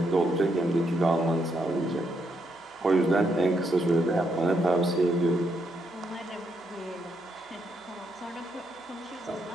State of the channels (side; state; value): both; normal; correlation 0.78